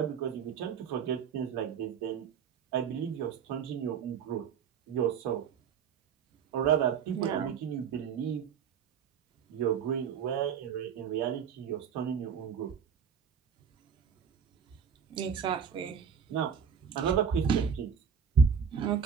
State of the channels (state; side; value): quieter; left; 7.1 dB